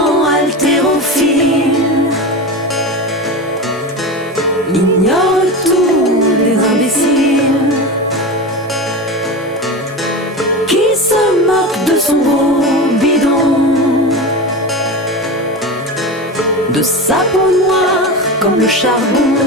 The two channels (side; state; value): both; normal; correlation 0.24